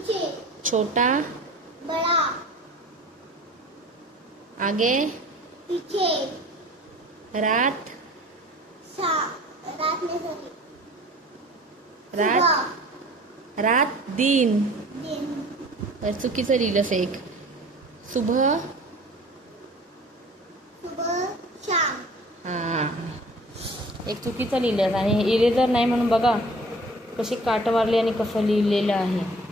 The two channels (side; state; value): both; normal; correlation 0.46